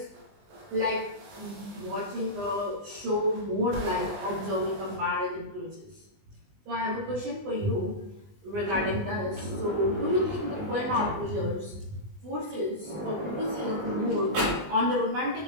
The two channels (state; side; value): late; left; 20 ms